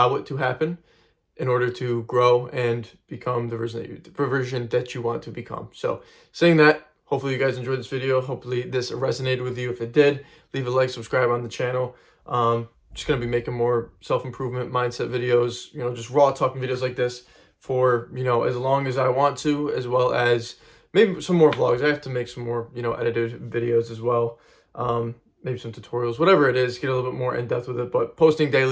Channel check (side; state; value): both; identical; correlation 1.00